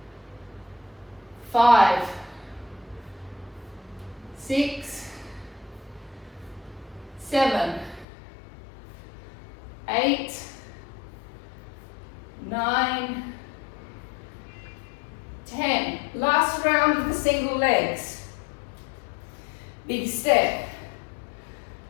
5, 6, 7, 8, 9, 10. Last round of the single legs. Big step.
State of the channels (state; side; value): drops out; right; at 8.1 s